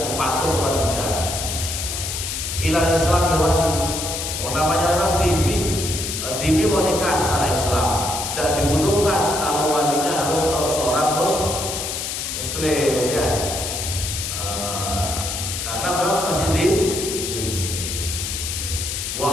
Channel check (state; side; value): noise; left; hiss, 4 dB below the sound